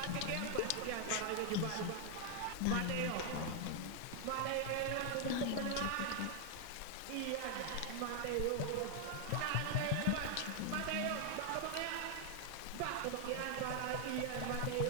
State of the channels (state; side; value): different; both; correlation 0.00